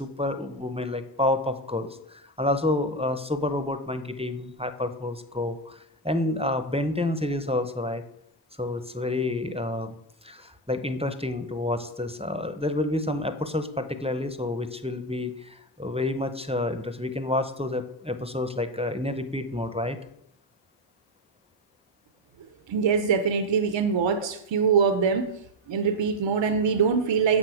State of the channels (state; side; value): normal; both; correlation 0.09